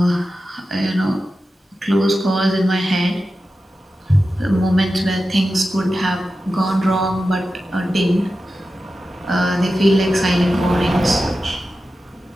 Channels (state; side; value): normal; both; correlation 0.92